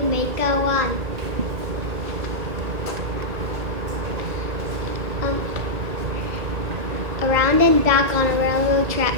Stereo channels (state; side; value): late; left; 1.8 ms